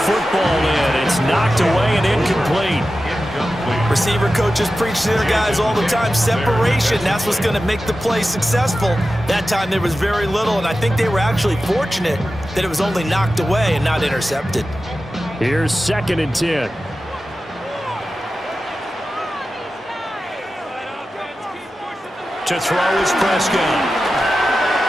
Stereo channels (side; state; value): both; normal; correlation 0.93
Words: in. It's knocked away and incomplete. Receiver coaches preach to their guys all the time. Separation, that's what's going to make the play successful. That time there was very little, and I think they were actually fortunate that it was only knocked away and not intercepted. Here's 2nd and 10. To throw is Prescott.